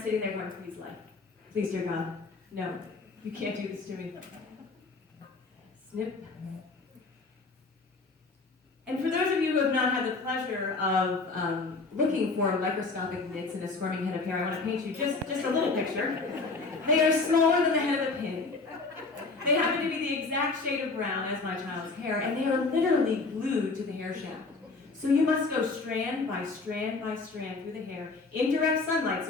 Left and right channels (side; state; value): right; quieter; 3.8 dB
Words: sitting there going, please, life. Please, dear God, no, you can't do this to me. Snip. And for those of you who have not had the pleasure of looking for microscopic nits in a squirming head of hair, I want to paint you just a little picture. They are smaller than the head of a pin. They happen to be the exact shade of brown as my child's hair, and they are literally glued to the hair shaft. So you must go strand by strand by strand through the hair in direct sunlight,